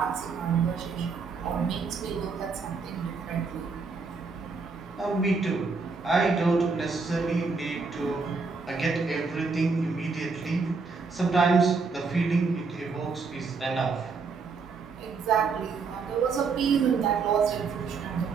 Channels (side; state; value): left; quieter; 4.7 dB